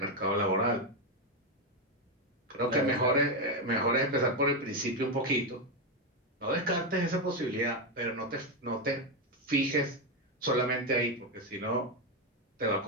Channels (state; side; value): normal; both; correlation 0.07